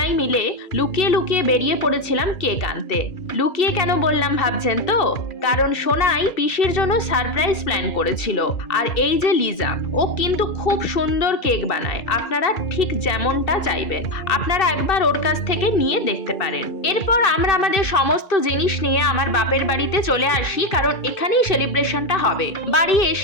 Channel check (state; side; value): late; right; 2.3 ms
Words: মিলে লুকিয়ে লুকিয়ে বেরিয়ে পড়েছিলাম কেক আনতে। লুকিয়ে কেন বললাম ভাবছেন তো? কারণ সোনাই পিসির জন্য সারপ্রাইজ প্ল্যান করেছিল। আর এই যে লিজা, ও কিন্তু খুব সুন্দর কেক বানায়, আপনারা ঠিক যেমনটা চাইবেন। আপনারা একবার ওর কাছ থেকে নিয়ে দেখতে পারেন। এরপর আমরা আমাদের সমস্ত জিনিস নিয়ে আমার বাপের বাড়িতে চলে আসি, কারণ এখানেই সেলিব্রেশনটা হবে। বাড়ি